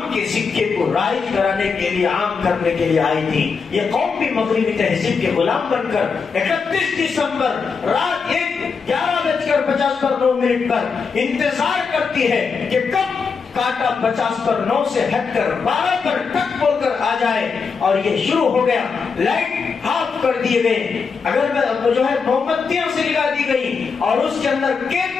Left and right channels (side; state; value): right; quieter; 5.3 dB